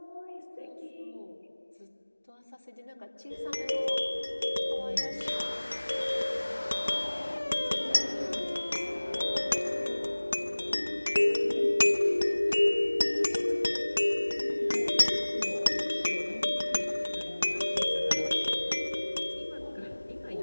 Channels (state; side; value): inverted; both; correlation -1.00